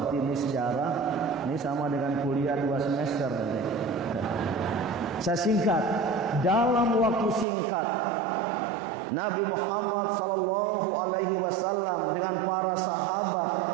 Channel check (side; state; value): left; drops out; at 7.5 s